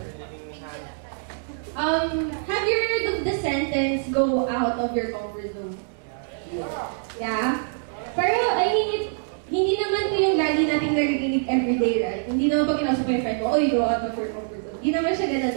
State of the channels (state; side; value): silent; left; digital silence